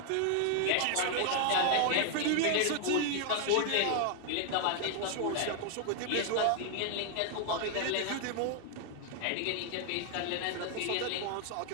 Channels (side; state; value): both; different; correlation 0.00